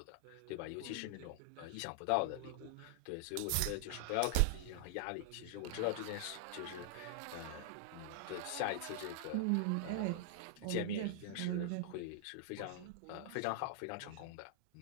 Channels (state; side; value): different; both; correlation -0.01